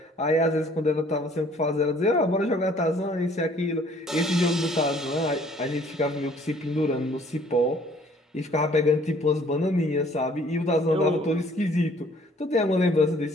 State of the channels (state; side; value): normal; both; correlation 0.58